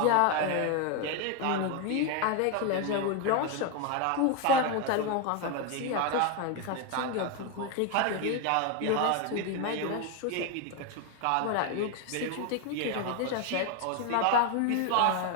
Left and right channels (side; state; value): both; different; correlation 0.01